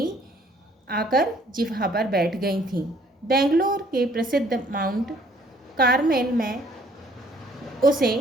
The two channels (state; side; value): normal; both; correlation 0.61